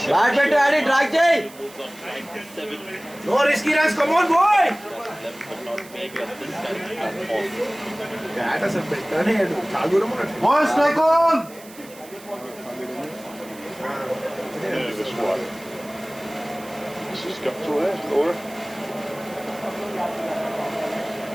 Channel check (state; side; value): noise; right; hiss, 20 dB below the sound